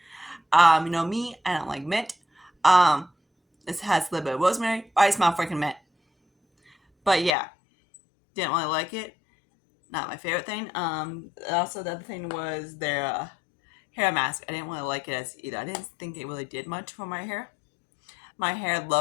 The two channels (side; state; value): right; drops out; at 7.4 s